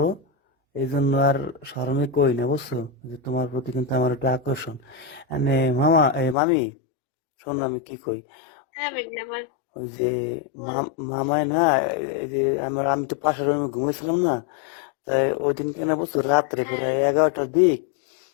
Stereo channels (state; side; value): drops out; right; at 6.4 s